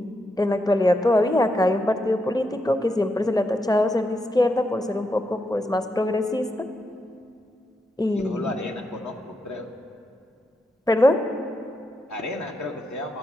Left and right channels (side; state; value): both; normal; correlation 0.83